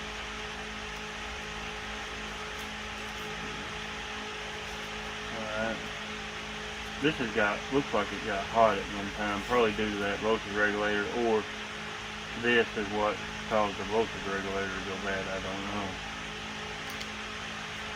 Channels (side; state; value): both; identical; correlation 1.00